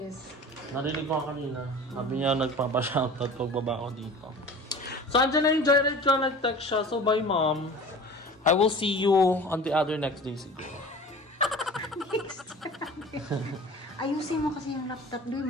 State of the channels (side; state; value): both; normal; correlation 0.40